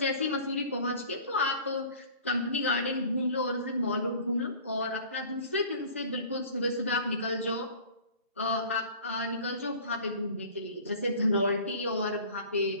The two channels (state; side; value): inverted; both; correlation -0.45